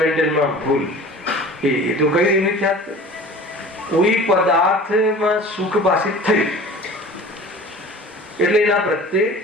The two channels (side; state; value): both; normal; correlation 0.42